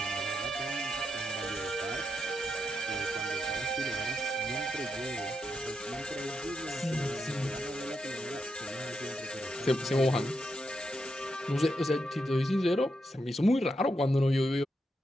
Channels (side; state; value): both; normal; correlation 0.83